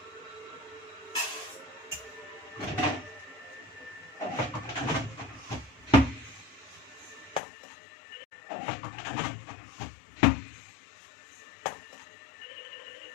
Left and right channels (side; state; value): right; drops out; at 7.4 s